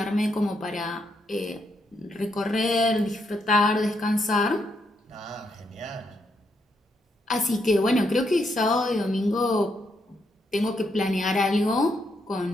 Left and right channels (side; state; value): both; normal; correlation 0.78